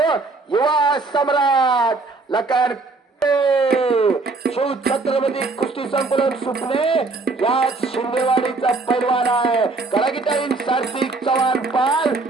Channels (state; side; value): quieter; left; 3.7 dB